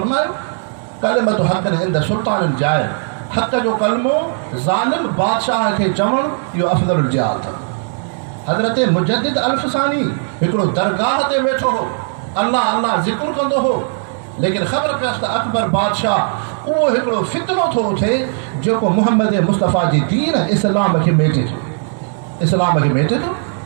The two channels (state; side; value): silent; left; 68 dB below the other